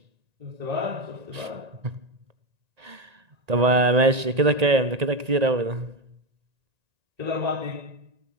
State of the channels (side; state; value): left; late; 1.9 ms